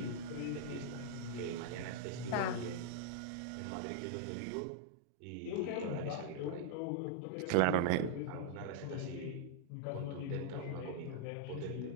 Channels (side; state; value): both; different; correlation -0.01